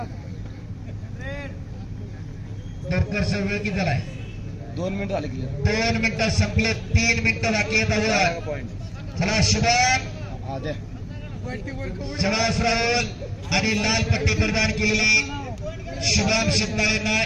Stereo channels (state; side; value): identical; both; correlation 1.00